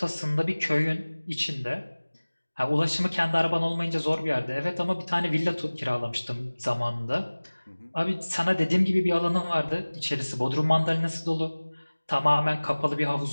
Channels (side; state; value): both; inverted; correlation -1.00